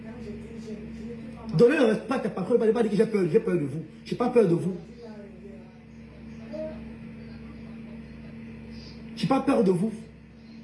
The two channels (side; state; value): both; identical; correlation 1.00